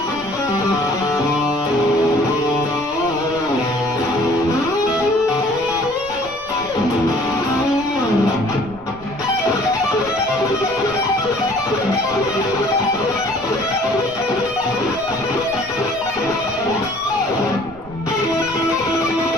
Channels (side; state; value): right; noise; rumble, 20 dB below the sound